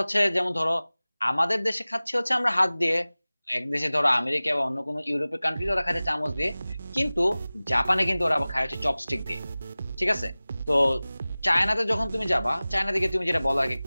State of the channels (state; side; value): inverted; both; correlation -0.98